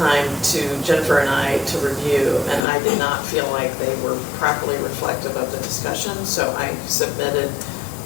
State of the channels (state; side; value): drops out; right; at 2.7 s